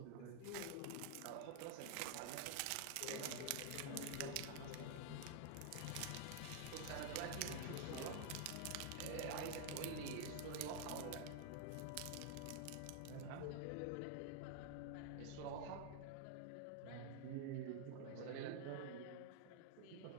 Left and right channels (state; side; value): different; both; correlation 0.00